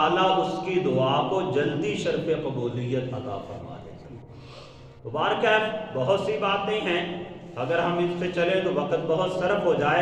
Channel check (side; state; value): both; identical; correlation 1.00